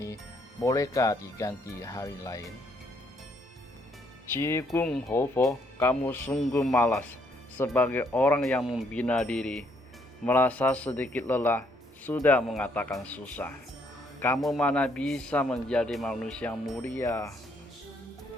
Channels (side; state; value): both; normal; correlation 0.70